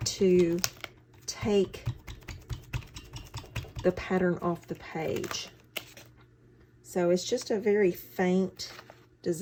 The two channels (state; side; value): identical; both; correlation 1.00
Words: to take the pattern off the page. So it's just a very faint